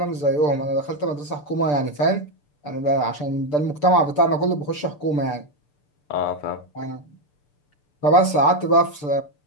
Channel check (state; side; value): late; right; 6.8 ms